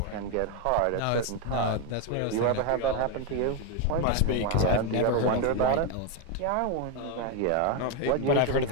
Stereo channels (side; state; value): both; different; correlation 0.02